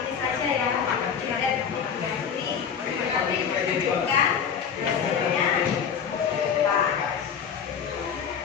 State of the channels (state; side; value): quieter; right; 7.4 dB